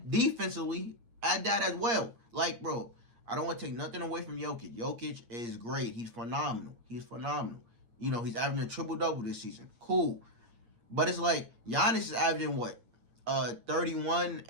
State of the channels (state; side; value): late; left; 8.6 ms